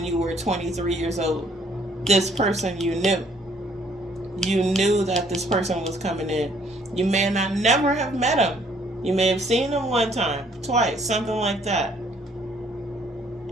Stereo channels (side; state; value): both; normal; correlation 0.63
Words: you were 23 years old. This person you knew that this person was coming in. You may not never have met him. You may have seen him one time, twice, something like that.